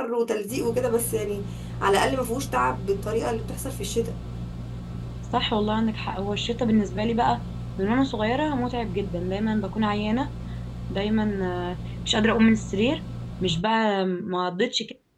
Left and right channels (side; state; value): both; identical; correlation 1.00